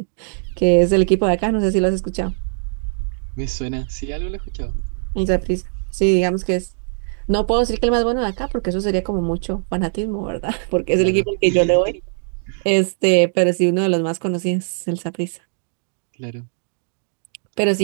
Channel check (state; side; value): silent; left; digital silence